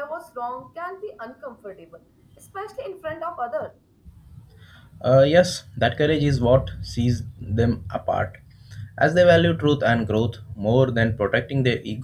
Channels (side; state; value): both; identical; correlation 1.00